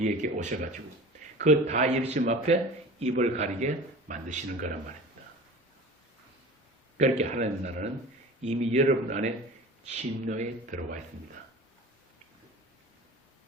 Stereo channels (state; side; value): normal; both; correlation 0.38